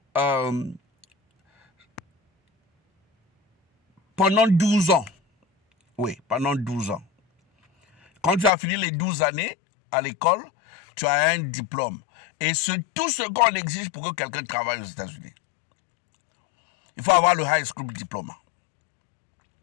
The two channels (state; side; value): drops out; right; at 8.5 s